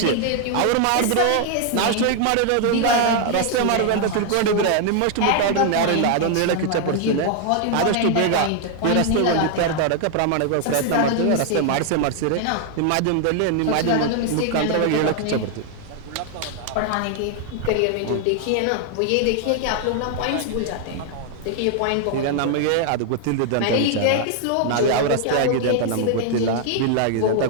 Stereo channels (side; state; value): both; different; correlation 0.00